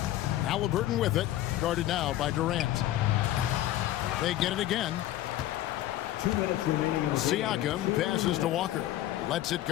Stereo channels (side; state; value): right; quieter; 14.1 dB